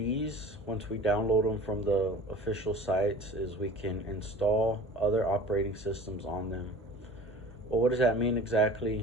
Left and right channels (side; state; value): both; normal; correlation 0.42